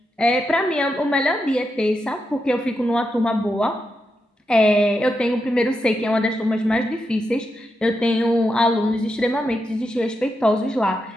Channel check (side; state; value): both; normal; correlation 0.85